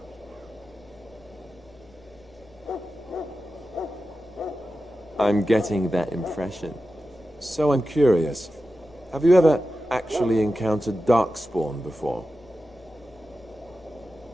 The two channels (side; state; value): left; noise; hum, 26 dB below the sound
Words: I'm getting that impression. So I'm curious. Have you ever actually encountered Darkspawn before?